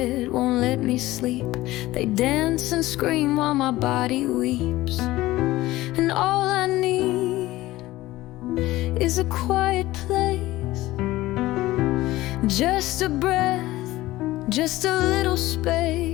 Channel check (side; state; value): right; quieter; 17.3 dB